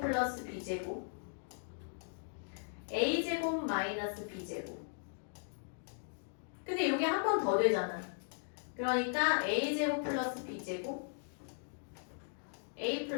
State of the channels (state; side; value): silent; right; digital silence